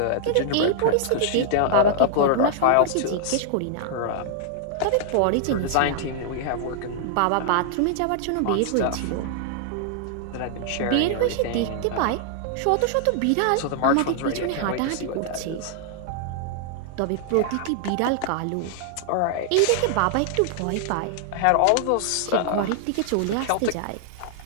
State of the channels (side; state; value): both; different; correlation -0.01